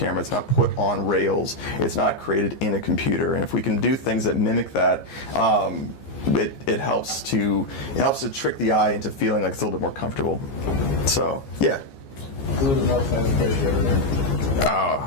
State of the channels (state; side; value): late; right; 15 ms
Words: It's not put on rails. It's not created in a computer. And if we can do things that mimic that, it helps to trick the eye into feeling like it's a little bit more comfortable. So yeah. Who was the most famous person you ever met?